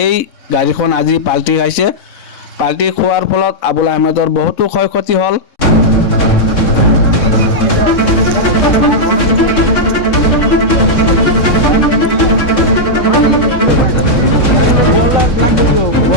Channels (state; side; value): late; right; 3.6 ms